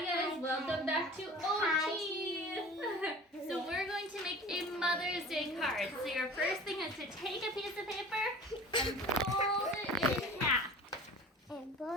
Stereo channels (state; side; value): normal; both; correlation 0.41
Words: guys, welcome back to OT. So we're going to make a Mother's Day card. So your first thing is to take a piece of paper and fold it in half. And put